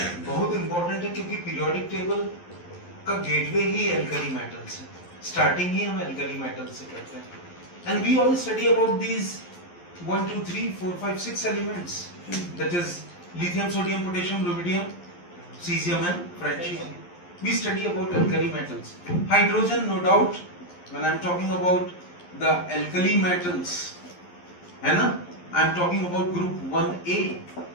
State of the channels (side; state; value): right; late; 11 ms